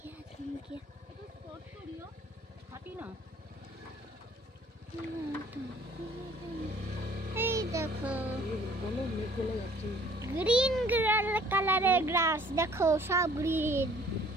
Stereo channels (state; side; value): normal; both; correlation 0.56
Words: এই দেখো গ্রিন কালারের গ্রাস, দেখো সব গ্রিন